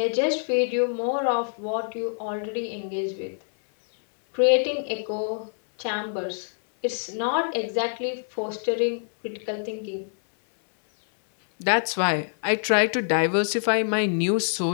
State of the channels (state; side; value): silent; right; 61 dB below the other